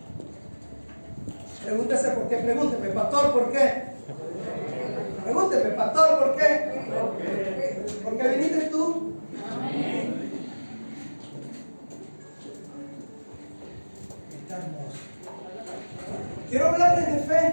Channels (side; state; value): both; inverted; correlation -1.00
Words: Pregúntese por qué. Pregúnteme, pastor, ¿por qué? Pregúnteme, pastor, ¿por qué? ¿Por qué viniste tú? Está hermoso. Quiero hablarles de